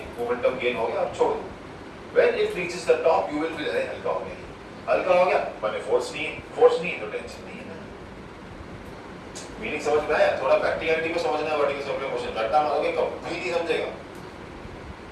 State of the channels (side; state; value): both; identical; correlation 1.00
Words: मोमेंटम गेन हो गया, अब छोड़ दो। When it reaches the top, you will feel अरे हल्का हो गया, हल्का हो गया, मैंने फोर्स नहीं तो टेंशन नहीं है ना। मीनिंग समझ में आया? थोड़ा प्रैक्टिकलिटी को समझना है, वर्टिकल सर्कुलर मोशन रट्टा मारोगे कभी नहीं समझेगा,